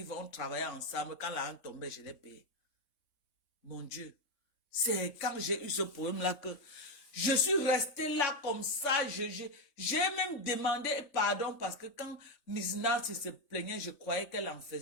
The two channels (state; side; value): late; right; 3.5 ms